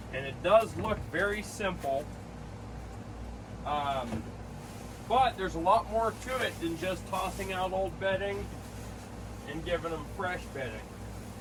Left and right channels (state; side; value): identical; both; correlation 1.00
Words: and it does look very simple, but there's a lot more to it than just tossing out old bedding and giving them fresh bedding.